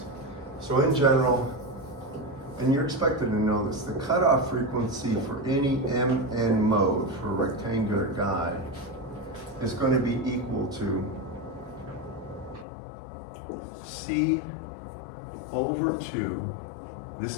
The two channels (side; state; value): right; drops out; at 12.7 s